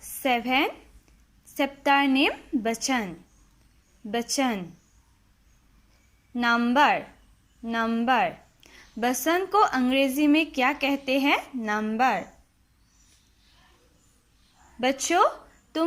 7. Chapter name बचन. बचन. नंबर. बसन को अंग्रेजी में क्या कहते हैं? नंबर. बच्चों,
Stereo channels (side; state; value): both; identical; correlation 1.00